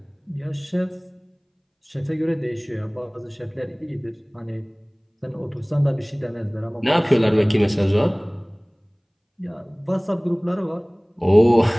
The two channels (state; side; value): identical; both; correlation 1.00